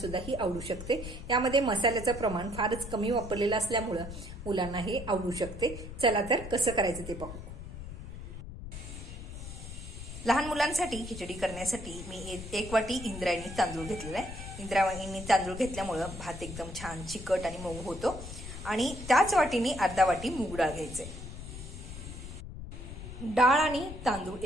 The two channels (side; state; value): left; noise; rumble, 10 dB below the sound